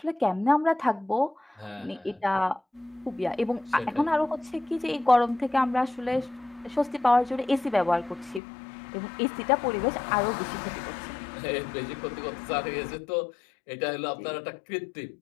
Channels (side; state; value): right; drops out; at 8.4 s